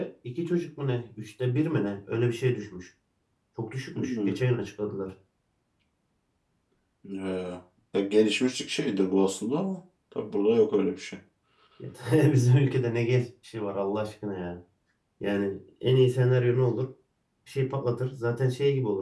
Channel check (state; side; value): identical; both; correlation 1.00